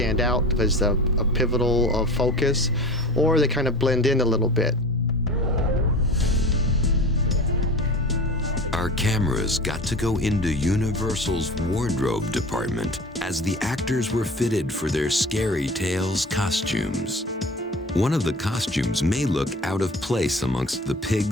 out as a pivotal focus, or they kind of blend in a little bit. Our cameras got to go into Universal's wardrobe department as the actors were fitted for their Scary Tales costumes. One of the costumes may look out of place amongst the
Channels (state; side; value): normal; both; correlation 0.35